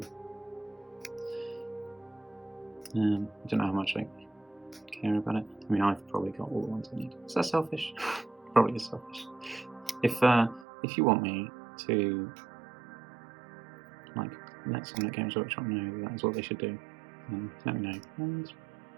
I don't know how much I care about it. I mean, I've probably got all the ones I need. Is that selfish? Probably is selfish. If you want me to, like, let someone at Games Workshop know that is what they should do, then let me know, and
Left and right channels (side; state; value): left; drops out; at 10.7 s